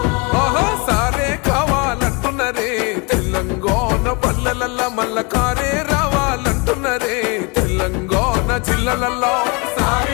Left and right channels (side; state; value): right; quieter; 30.4 dB